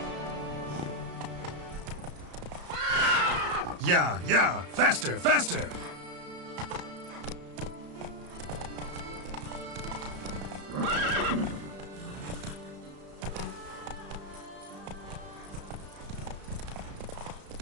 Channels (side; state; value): left; late; 34 ms